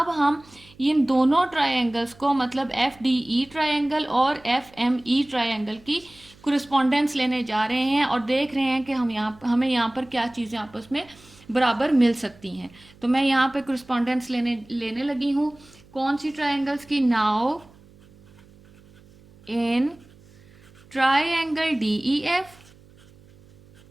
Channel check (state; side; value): noise; right; hum, 26 dB below the sound